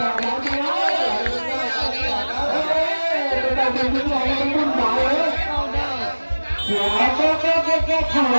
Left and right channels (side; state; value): both; inverted; correlation -1.00